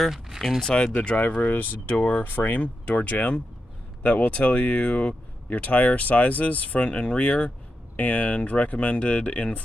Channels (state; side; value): normal; both; correlation 0.87